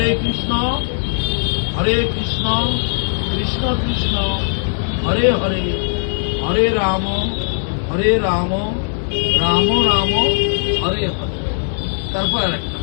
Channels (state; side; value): silent; right; 61 dB below the other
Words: কৃষ্ণ কৃষ্ণ কৃষ্ণ হরে হরে, হরে রাম রাম রাম হরে হরে। তারপর আরেকটা